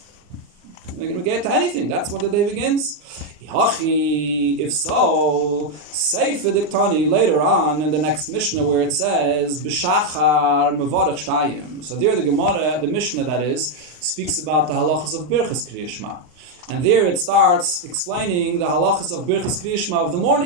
We're going to get to anything. That's when the day begins. If so, Sefer Diktani later on in the next Mishnah where it says B'shachar mevarich shtayim. So there the Gemara, the Mishnah that is, speaks about the halachas of Birchas Kriya Shema. And there it starts explaining the halachas of Birchas Kriya Shema of the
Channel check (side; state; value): left; late; 39 ms